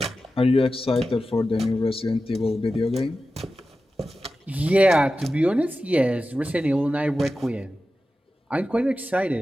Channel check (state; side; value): normal; both; correlation 0.93